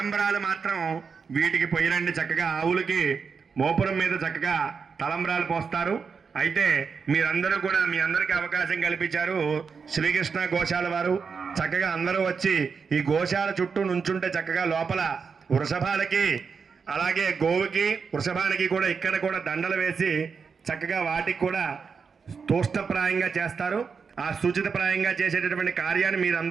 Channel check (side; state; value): left; quieter; 5.6 dB